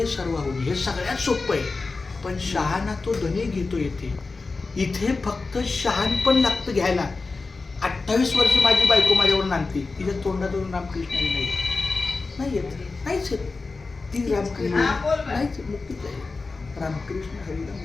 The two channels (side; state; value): right; quieter; 3.9 dB